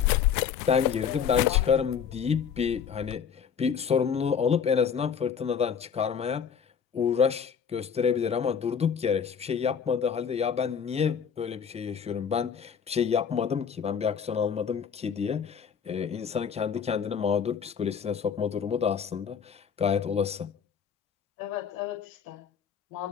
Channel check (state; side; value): quieter; right; 7.2 dB